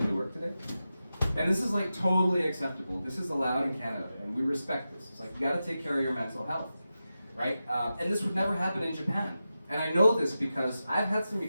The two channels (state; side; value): inverted; both; correlation -0.92